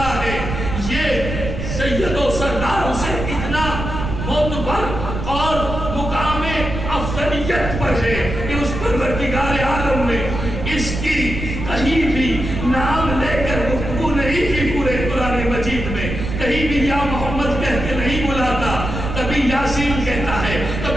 ہے، یہ سید و سردار اسے اتنا معتبر اور مقام افضلیت پر ہے کہ اس پروردگار عالم نے اس کی کہیں بھی نام لے کر گفتگو نہیں کی۔ پورے قرآن مجید میں کہیں بھی یا محمد کہہ کے نہیں بلاتا، کبھی یاسین کہتا ہے،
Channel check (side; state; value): right; noise; rumble, 5 dB below the sound